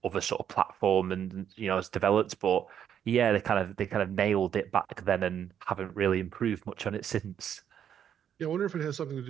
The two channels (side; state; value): left; quieter; 9.2 dB